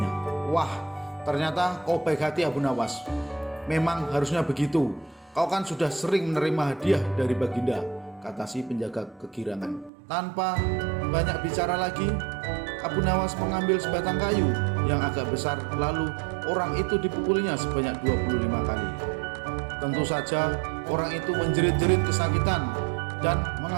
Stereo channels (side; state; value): left; drops out; at 9.9 s